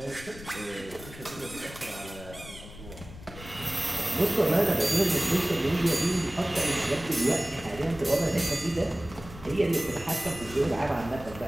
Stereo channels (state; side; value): noise; left; rumble, 15 dB below the sound